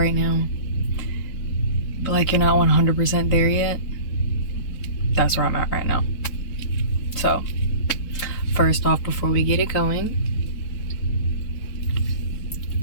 now, but like you're not 100% there yet? That's where I'm at right now. So, first off, before we get it going,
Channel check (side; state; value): right; late; 4.0 ms